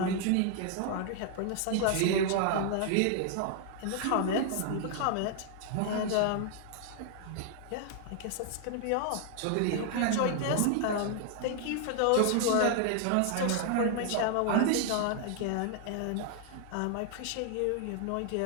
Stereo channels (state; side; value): different; both; correlation 0.00